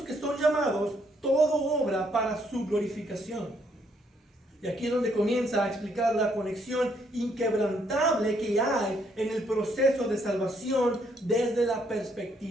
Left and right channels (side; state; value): both; normal; correlation 0.71